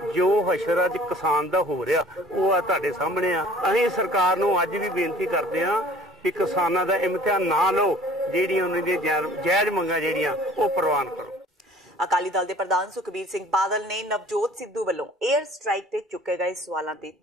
ਜੋ ਹਸ਼ਰ ਅੱਜ ਕਿਸਾਨ ਦਾ ਹੋ ਰਿਹਾ ਉਹ ਆ ਤੁਹਾਡੇ ਸਾਹਮਣੇ ਆ। ਅਸੀਂ ਸਰਕਾਰ ਨੂੰ ਅੱਜ ਵੀ ਬੇਨਤੀ ਕਰਦੇ ਹਾਂ ਕਿ ਕਿਸਾਨਾਂ ਦਾ ਇਮਤਿਹਾਨ ਨਾ ਲਓ, ਜਿਹੜੀਆਂ ਉਹਨਾਂ ਦੀਆਂ ਜਾਇਜ਼ ਮੰਗਾਂ ਜਿਹੜੀਆਂ ਉਹ ਪ੍ਰਵਾਨ ਕਰੋ। ਅਕਾਲੀ ਦਲ ਦੇ ਪ੍ਰਧਾਨ ਸੁਖਬੀਰ ਸਿੰਘ ਬਾਦਲ ਨੇ ਨਵਜੋਤ ਸਿੱਧੂ ਵੱਲੋਂ 에ਅਰ ਸਟ੍ਰਾਈਕ ਤੇ ਚੁੱਕੇ ਗਏ ਸਵਾਲਾਂ ਤੇ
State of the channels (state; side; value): normal; both; correlation 0.50